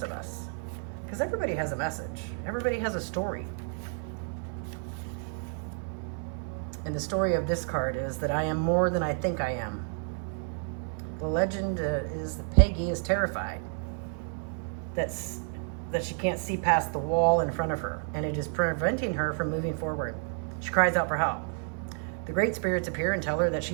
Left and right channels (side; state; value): left; silent; 57 dB below the other